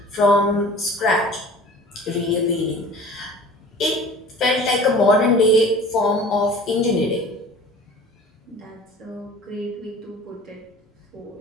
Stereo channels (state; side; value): normal; both; correlation 0.43